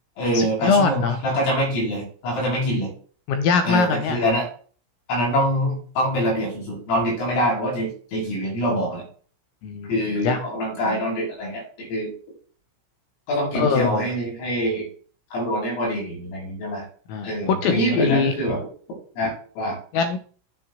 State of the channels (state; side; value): late; right; 17 ms